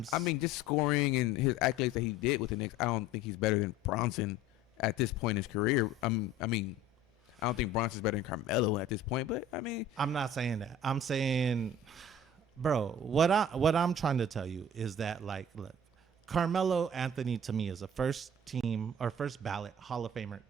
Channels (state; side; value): normal; both; correlation 0.45